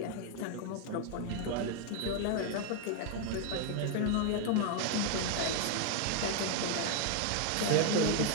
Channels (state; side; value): different; both; correlation 0.00